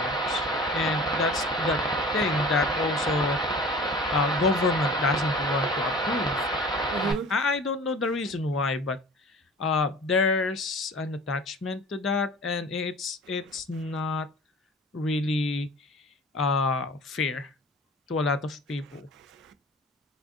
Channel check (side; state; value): both; normal; correlation 0.41